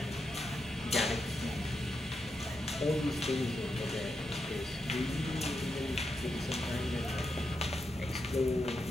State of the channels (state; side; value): normal; both; correlation 0.85